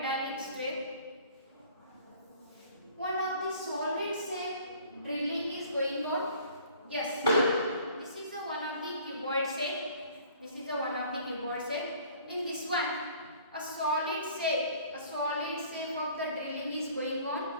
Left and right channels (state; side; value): inverted; both; correlation -0.52